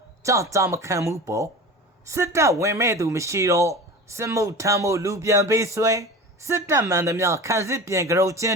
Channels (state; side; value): normal; both; correlation 0.33